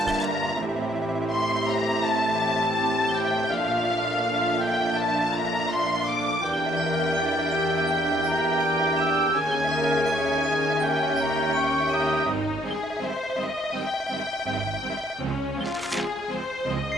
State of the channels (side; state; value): both; normal; correlation 0.68